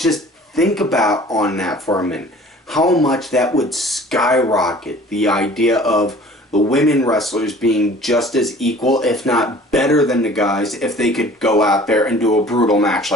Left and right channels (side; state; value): both; normal; correlation 0.48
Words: think about on that for a minute. How much that would skyrocket the idea of the women wrestlers being just as equal, if not better than the guys, if they could go out there and do a brutal match